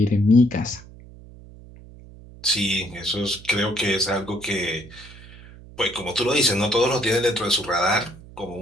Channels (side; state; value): right; noise; hum, 19 dB below the sound